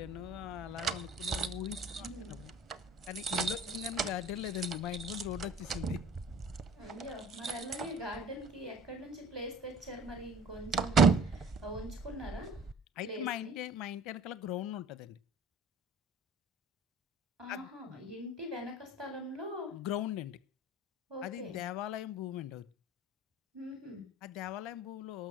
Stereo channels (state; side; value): normal; both; correlation 0.45